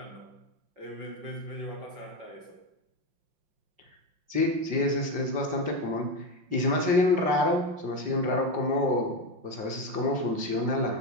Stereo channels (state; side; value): late; left; 5.6 ms